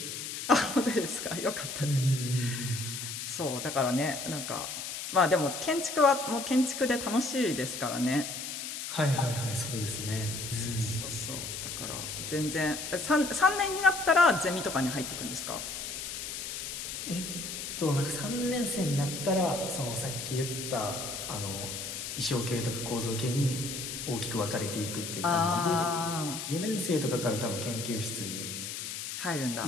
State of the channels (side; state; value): left; noise; hiss, 6 dB below the sound